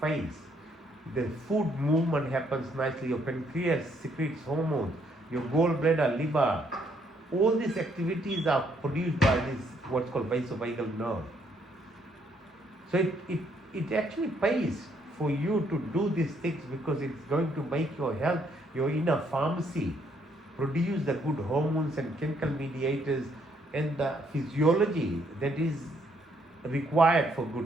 The food movement happens nicely, your pancreas secretes hormones, your gallbladder, liver, all these activities are produced by this what's called vasovagal nerve. So it actually pays for you to do these things because it's going to make your health, your inner pharmacy, produce the good hormones and chemical mediators and the physiology that is required for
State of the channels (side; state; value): both; normal; correlation 0.70